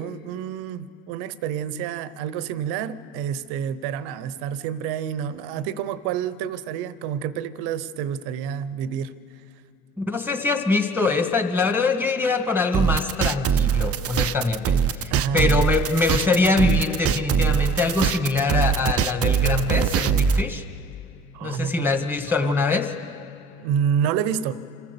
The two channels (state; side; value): normal; both; correlation 0.48